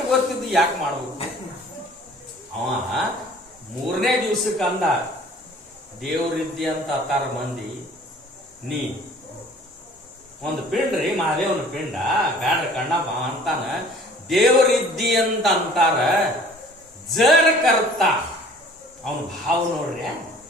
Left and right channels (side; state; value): both; normal; correlation 0.51